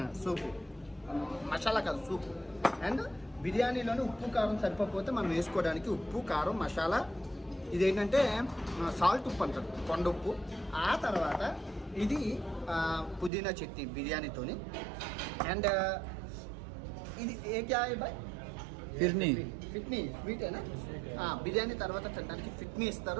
సూపు మసాలా కాదు, సూప్. అండ్ బిర్యానీలోనే ఉప్పు కారం సరిపోతే మనం వేసుకోవడానికి ఉప్పు కారం మసాలా, ఇదేంటంటే సాల్ట్ ఉప్పు అంటారు, కొండ ఉప్పు. ఆ తర్వాత ఇది పుదీనా చట్నీ బిర్యానీతోని. అండ్ ఇది ఏ క్యా బాయ్ ఫిట్నీ స్వీటేనా. బిర్యానీ తర్వాత తినడానికి ఫిట్నీ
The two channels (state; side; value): drops out; left; at 13.3 s